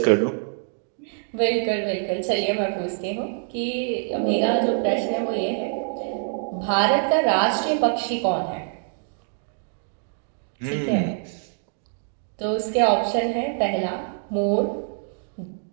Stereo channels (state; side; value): silent; left; digital silence